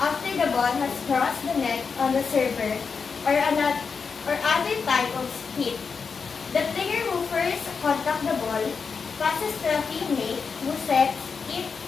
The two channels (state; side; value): quieter; right; 5.5 dB